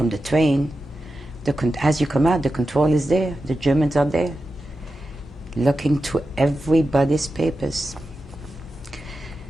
the train. As you come out, the control is there. The Germans are there, looking through everybody's papers.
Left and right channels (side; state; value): both; normal; correlation 0.91